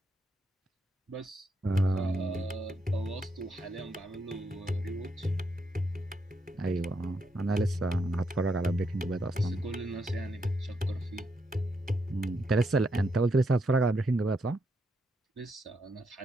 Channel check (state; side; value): normal; both; correlation 0.79